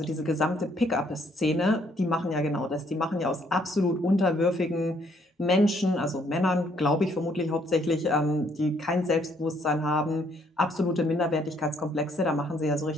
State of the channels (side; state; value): both; normal; correlation 0.67